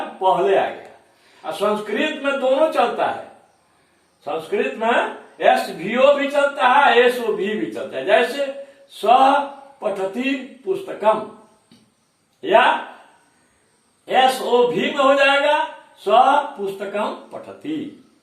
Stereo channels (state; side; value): identical; both; correlation 1.00